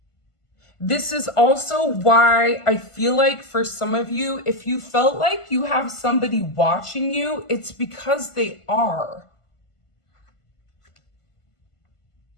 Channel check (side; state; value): right; late; 1.5 ms